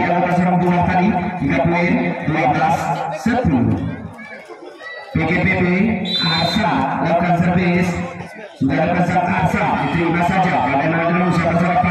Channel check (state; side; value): identical; both; correlation 1.00